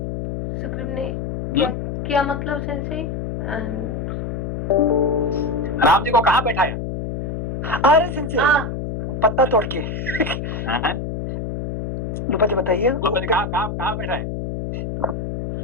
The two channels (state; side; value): noise; left; hum, 4 dB below the sound